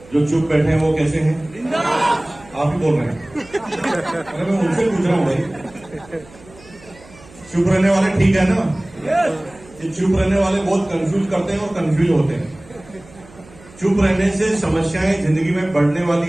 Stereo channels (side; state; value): right; noise; hum, 23 dB below the sound